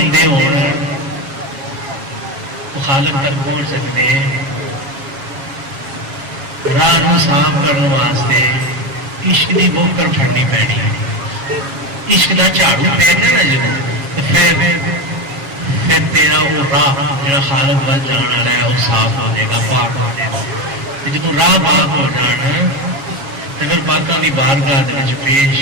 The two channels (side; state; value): left; late; 7.3 ms